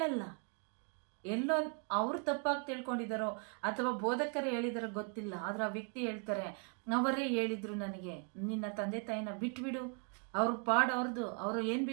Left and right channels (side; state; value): left; quieter; 39.4 dB